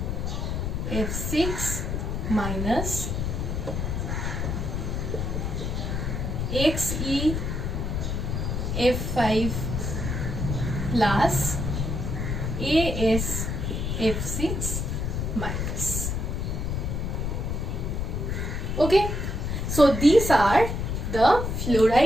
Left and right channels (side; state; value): left; noise; rumble, 1 dB below the sound